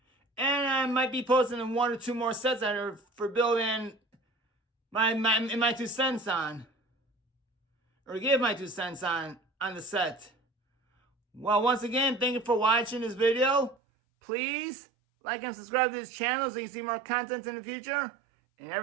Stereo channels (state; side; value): drops out; left; at 13.8 s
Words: And I might be posting 1 or 2 more sets that are for building my 2 cents on. Or give my 2 cents on the set. Well, once again, thank you for watching this video. Please like and subscribe to this channel so you can see more content in the future. And have